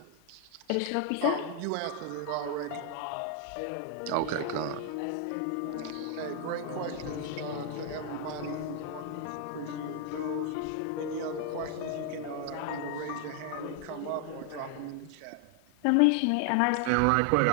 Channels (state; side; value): different; both; correlation 0.00